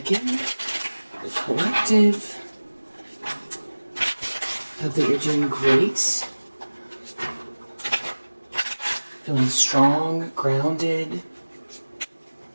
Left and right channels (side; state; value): both; inverted; correlation -1.00